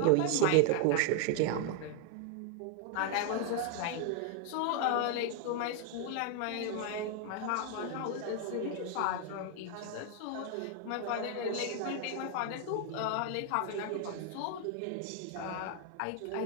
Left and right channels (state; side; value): different; both; correlation 0.00